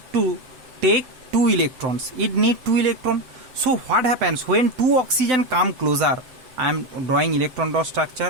to take 2 electrons. It need 2 electrons. So what happens when 2 oxygen come closer? I am drawing electron dot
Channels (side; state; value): left; late; 7.9 ms